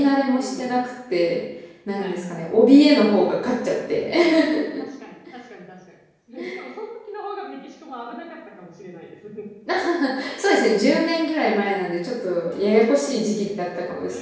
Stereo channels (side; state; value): both; identical; correlation 1.00